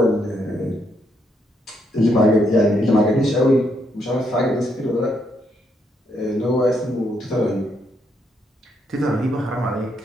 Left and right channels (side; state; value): both; normal; correlation 0.76